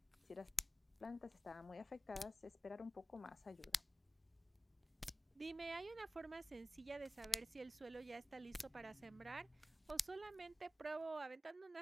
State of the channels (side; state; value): both; normal; correlation 0.96